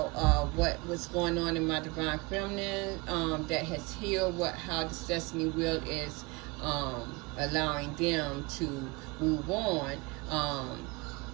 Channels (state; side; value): quieter; left; 26.0 dB